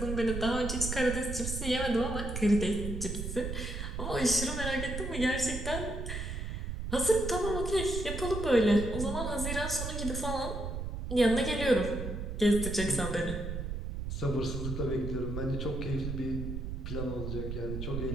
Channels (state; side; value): noise; right; rumble, 4 dB below the sound